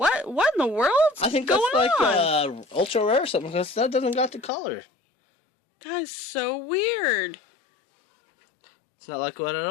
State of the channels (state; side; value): drops out; right; at 4.5 s